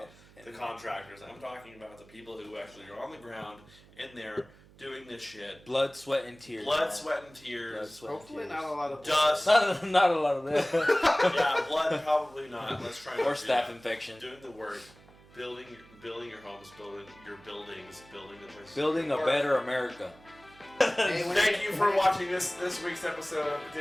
the contractors. I'm talking about the people who actually are on the ground in there doing this shit. Blood, sweat, and tears. Sweat, and tears. Blood, sweat, Hopefully and tears. Not a lot of dust. Not a lot of that. Yeah, blood probably not. Let's try. Or staph infection. Doing the work, building your homes, building your buildings, building the places. Building a better America. Thank you for watching this week's episode of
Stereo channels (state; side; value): noise; right; hum, 25 dB below the sound